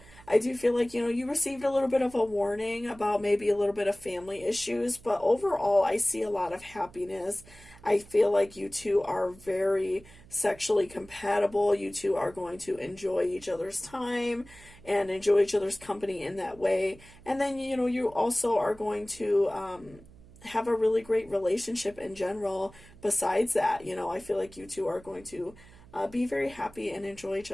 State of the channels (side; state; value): right; noise; hum, 22 dB below the sound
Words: I do feel like, you received a little bit of a warning about maybe a little bit of family issues, but overall, I see a lot of happiness. I feel like you two are very sexually compatible. You two are going to enjoy each other's time and enjoy each other's company in that way. And then, you also are going to, have a really great relationship in general besides that. I feel like you two are going to be very happy and enjoy each